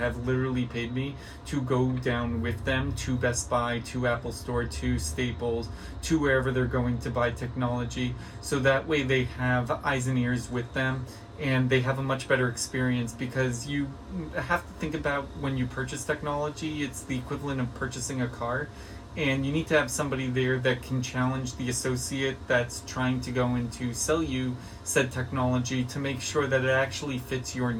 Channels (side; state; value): both; identical; correlation 1.00